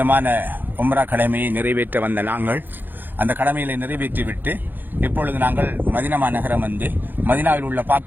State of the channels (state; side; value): late; left; 0.090 ms